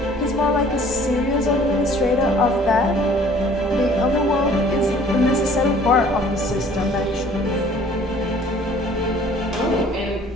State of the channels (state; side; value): normal; both; correlation 0.54